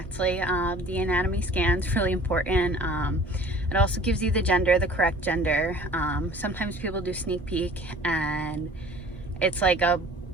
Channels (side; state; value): both; normal; correlation 0.48